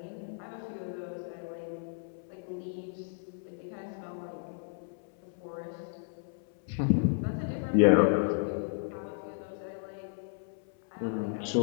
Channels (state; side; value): silent; right; 56 dB below the other